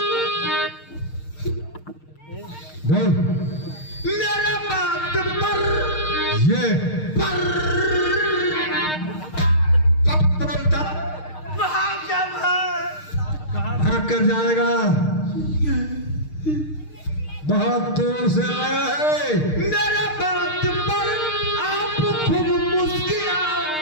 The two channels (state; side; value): late; right; 6.5 ms